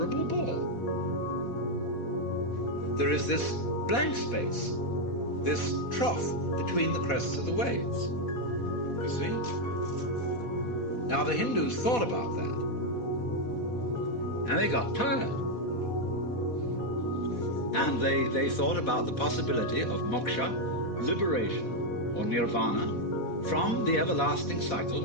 bore. There is this blank space, this trough between the crests of the waves. You see? Now the Hindus thought about that, and they got tired. And they thought about the possibility of moksha, liberation, or nirvana, from the everlasting cycle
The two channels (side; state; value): right; late; 4.1 ms